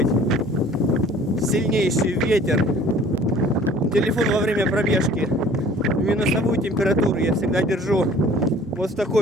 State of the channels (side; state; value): both; normal; correlation 0.50